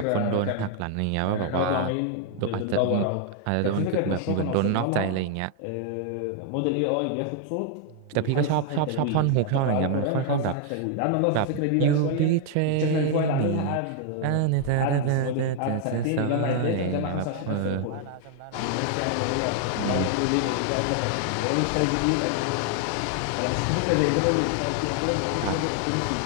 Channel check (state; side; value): different; both; correlation 0.00